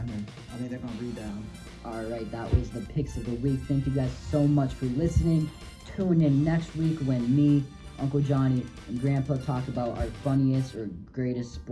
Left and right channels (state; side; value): identical; both; correlation 1.00